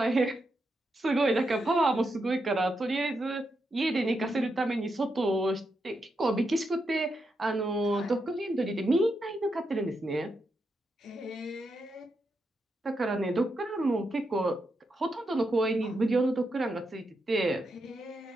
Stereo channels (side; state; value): both; normal; correlation 0.84